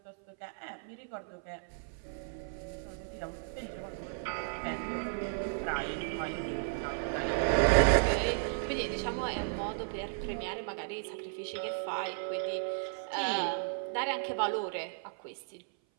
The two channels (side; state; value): left; silent; 55 dB below the other